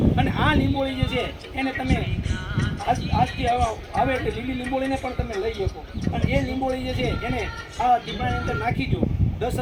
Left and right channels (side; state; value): both; identical; correlation 1.00